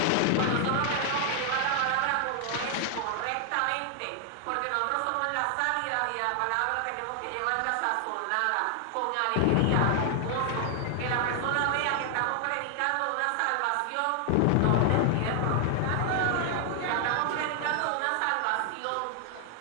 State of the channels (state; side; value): different; both; correlation 0.00